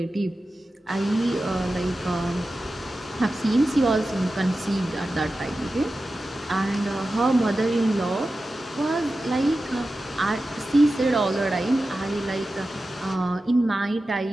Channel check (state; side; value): normal; both; correlation 0.93